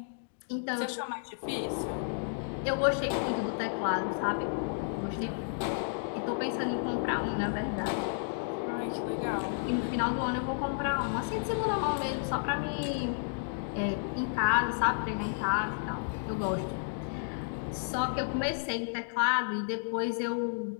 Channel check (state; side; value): silent; right; digital silence